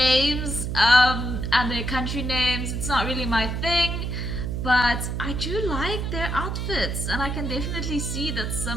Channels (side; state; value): right; noise; hum, 2 dB below the sound